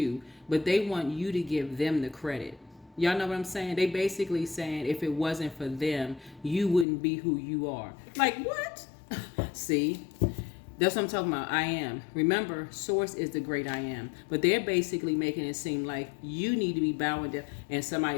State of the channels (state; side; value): drops out; right; at 6.9 s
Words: but they want you to give them the credit. Y'all know what I'm saying? They basically saying if it wasn't for them, you wouldn't be who you are. Like, what? See? That's what I'm talking about. I am. Remember, source is the great I am. But they're basically making it seem like you need to be bowing down. And